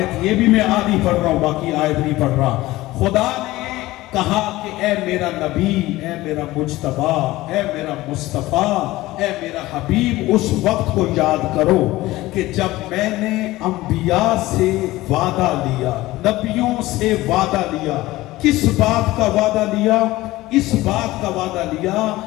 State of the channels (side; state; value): right; quieter; 18.0 dB